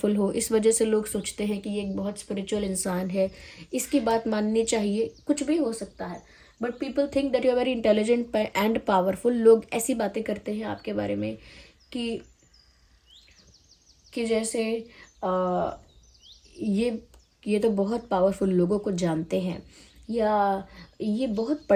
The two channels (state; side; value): identical; both; correlation 1.00